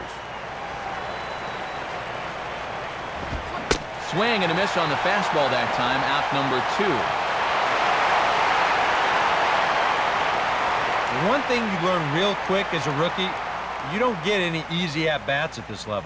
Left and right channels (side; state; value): both; identical; correlation 1.00